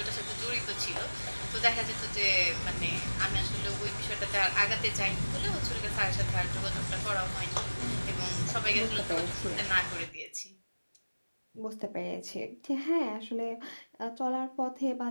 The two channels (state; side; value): inverted; both; correlation -1.00